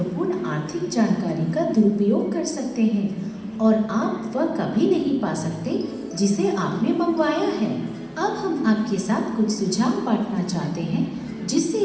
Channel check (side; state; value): both; identical; correlation 1.00